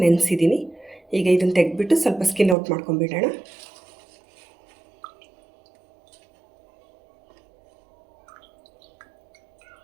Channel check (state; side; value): drops out; left; at 2.6 s